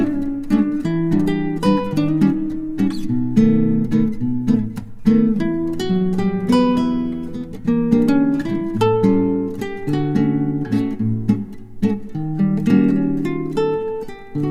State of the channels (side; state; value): both; identical; correlation 1.00